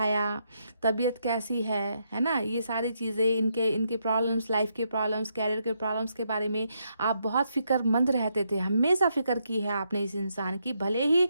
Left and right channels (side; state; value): both; inverted; correlation -0.78